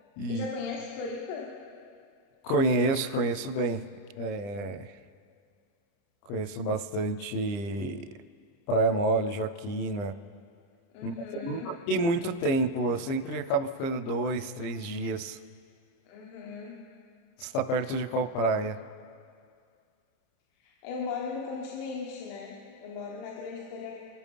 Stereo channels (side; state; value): right; late; 30 ms